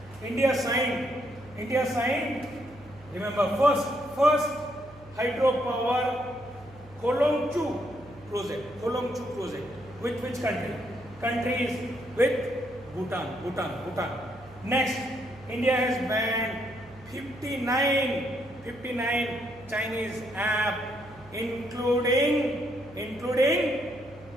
India signed. Remember, first hydropower Kolongchu project. Which country? Country is with Bhutan. Next, India has banned 59 Chinese app, including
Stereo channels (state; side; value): noise; right; hum, 22 dB below the sound